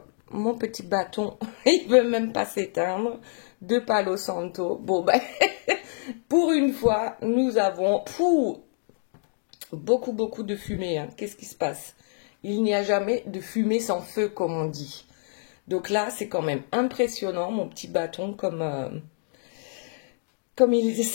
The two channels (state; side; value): silent; right; digital silence